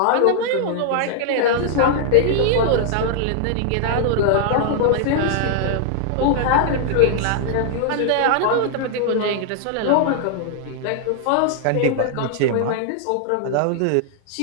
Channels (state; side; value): different; both; correlation -0.01